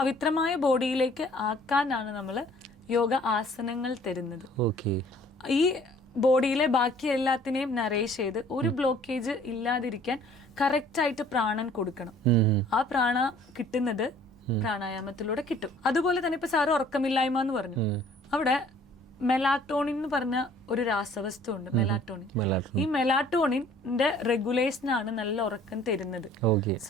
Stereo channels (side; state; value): both; normal; correlation 0.54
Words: ബോഡിയിലേക്ക് ആക്കാനാണ് നമ്മള് യോഗ ആസനങ്ങൾ തരുന്നത്. ഈ ബോഡിയിലെ ബാക്കി എല്ലാത്തിനെയും നറേഷ് ചെയ്ത് ഒരു ബ്ലോക്കേജ് ഇല്ലാതിരിക്കാൻ കറക്റ്റ് ആയിട്ട് പ്രാണൻ കൊടുക്കണം. ആ പ്രാണ കിട്ടുന്നത് പ്രാണായാമത്തിലൂടെ കിട്ടും. അതുപോലെ തന്നെ ഇപ്പൊ സാറ് ഉറക്കമില്ലായ്മ എന്ന് പറഞ്ഞു, അവിടെ മെലാറ്റോണിൻ എന്ന് പറഞ്ഞ ഒരു രാസവസ്തു ഉണ്ട്, മെലാറ്റോണിൻ. ഈ മെലാറ്റോണിന്റെ റെഗുലേഷൻ ആണ് നല്ല ഉറക്കം തരുന്നത്.